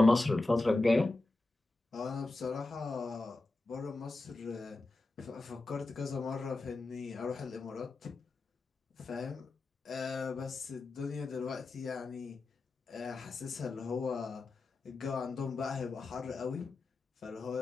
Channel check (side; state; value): right; quieter; 3.2 dB